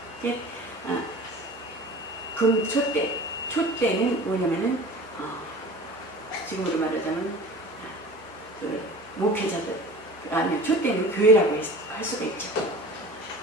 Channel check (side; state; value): both; normal; correlation 0.39